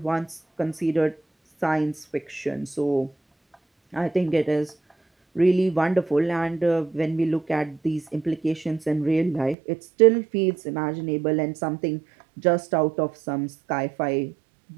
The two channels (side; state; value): left; drops out; at 9.6 s